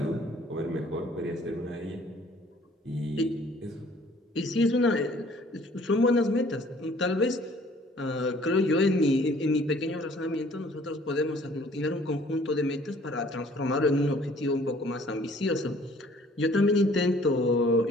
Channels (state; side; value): normal; both; correlation 0.56